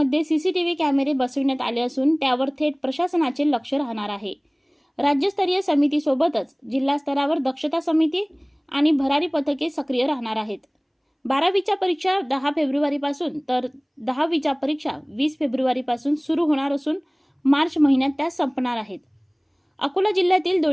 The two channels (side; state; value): both; identical; correlation 1.00